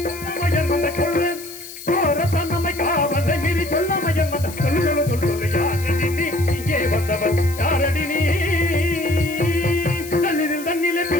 சொல்றேன். சோர தன்னமை காவலை மீறி சொல்லாமையன் வந்த சொல்லு சொல்லு சொல்லு யாரடி நீ இங்கே வந்தவன் யாரடி நீ? தண்ணில் தண்ணிலே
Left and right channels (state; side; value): noise; left; hiss, 14 dB below the sound